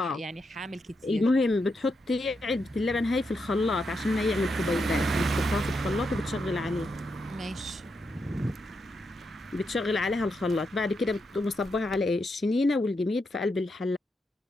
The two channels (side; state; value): both; normal; correlation 0.83